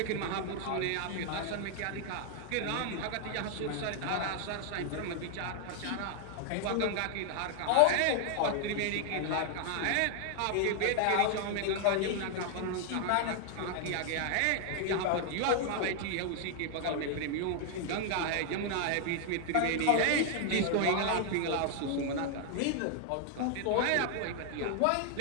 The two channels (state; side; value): different; both; correlation 0.00